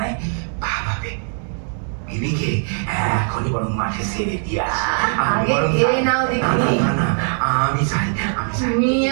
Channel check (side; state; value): left; silent; 65 dB below the other